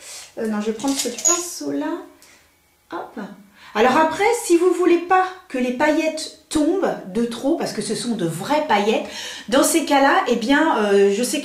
Non, je vais prendre ce pinceau-là. Hop. Alors après, si vous voulez pas que les paillettes tombent de trop, parce que ce sont de vraies paillettes, dans ces cas-là, eh bien, je sais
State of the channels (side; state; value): both; identical; correlation 1.00